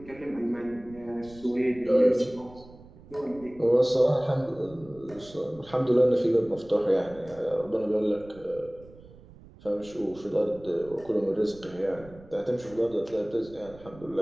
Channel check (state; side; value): noise; right; rumble, 21 dB below the sound